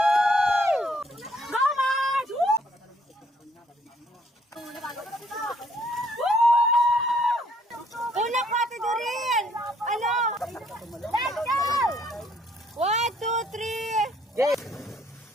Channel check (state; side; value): normal; both; correlation 0.65